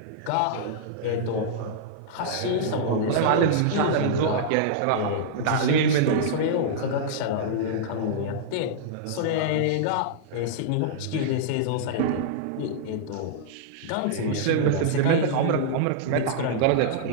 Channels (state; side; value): different; both; correlation -0.02